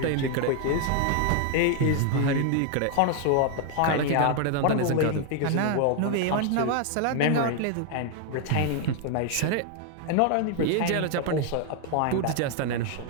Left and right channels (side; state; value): both; different; correlation 0.00